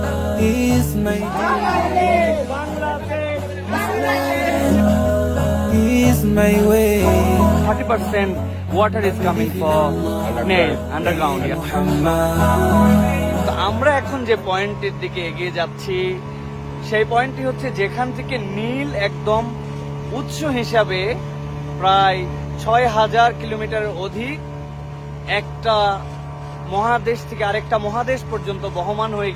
is my is my way. 30% water is coming from Nile underground. তো আমরা এখন যে পয়েন্টের দিকে এগিয়ে যাচ্ছি সেই পয়েন্টটি হচ্ছে যেখান থেকে নীল একদম উৎস হিসাবে প্রায় ৬,০০০ কিলোমিটারের অধিক একটা মহাদেশ থেকে আরেকটা মহাদেশ পর্যন্ত বহমান হয়ে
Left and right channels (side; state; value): both; identical; correlation 1.00